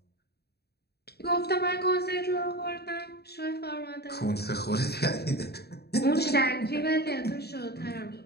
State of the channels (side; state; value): right; late; 0.47 ms